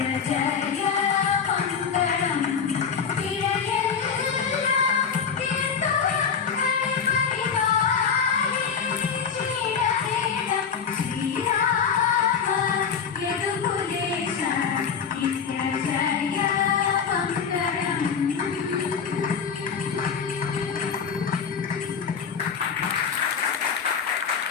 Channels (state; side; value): quieter; right; 6.6 dB